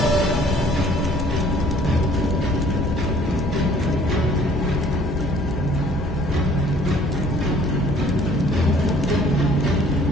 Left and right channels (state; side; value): normal; both; correlation 0.56